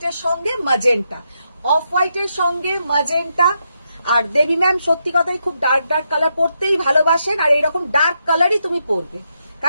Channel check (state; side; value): inverted; both; correlation -0.82